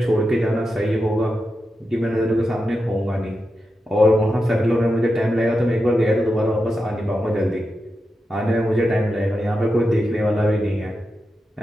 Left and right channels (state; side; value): normal; both; correlation 0.89